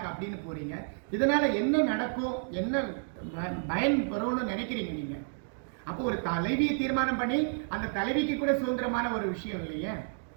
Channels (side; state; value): left; silent; digital silence